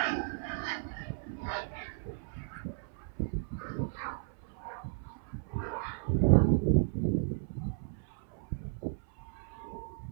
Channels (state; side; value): silent; left; 55 dB below the other